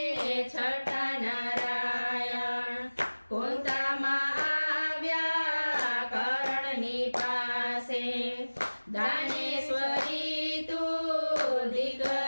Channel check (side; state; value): both; inverted; correlation -1.00